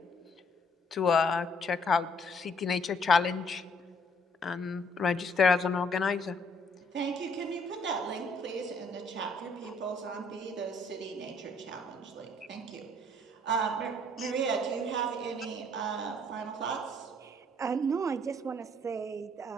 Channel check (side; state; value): both; normal; correlation 0.64